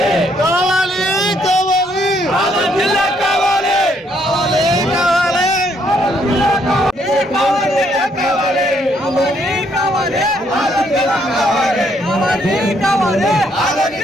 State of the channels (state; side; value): normal; both; correlation 0.70